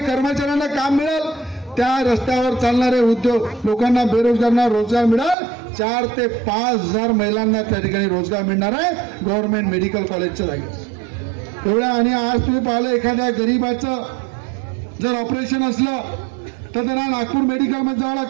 कर्मचाऱ्यांना काम मिळेल. त्या रस्त्यावर चालणारे उद्योग लोकांना, बेरोजगारांना रोजगार मिळेल. 4 ते 5 हजार महिलांना त्या ठिकाणी रोजगार मिळणार आहे गव्हर्नमेंट मेडिकल कॉलेजच्या जागी एवढ्या. आणि आज तुम्ही पाहिलं एखाद्या गरीबाचं जर ऑपरेशन असलं तर त्यांना नागपूर मेडिकलमध्ये जावं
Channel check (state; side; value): drops out; left; at 5.4 s